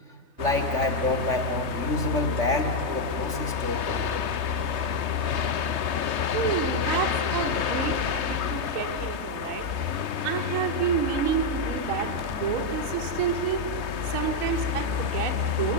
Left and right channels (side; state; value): left; late; 3.2 ms